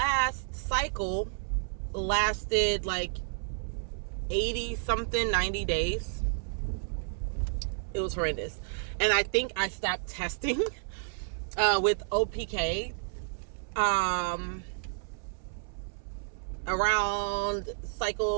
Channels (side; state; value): left; silent; 57 dB below the other